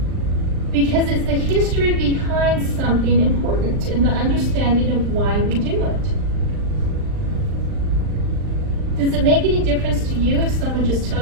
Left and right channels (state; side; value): late; left; 39 ms